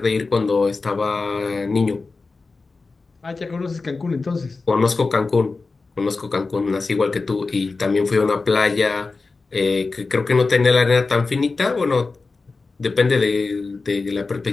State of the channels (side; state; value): right; quieter; 3.9 dB